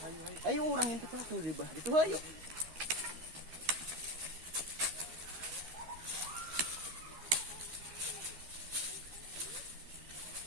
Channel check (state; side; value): late; left; 13 ms